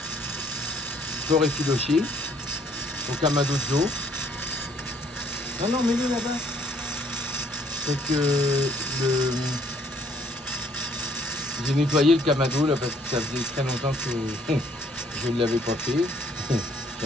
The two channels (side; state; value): both; normal; correlation 0.63